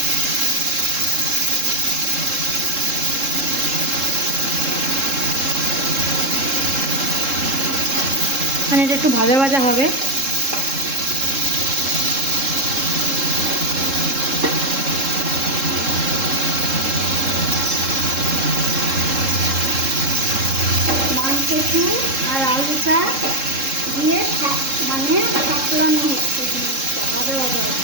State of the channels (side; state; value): left; late; 3.7 ms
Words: মানে এটা একটু ভাজা ভাজা হবে। মানকচু আর আলুটা দিয়ে মানে সাপলানো হচ্ছে, জিনিসটা ভাজা ভাজা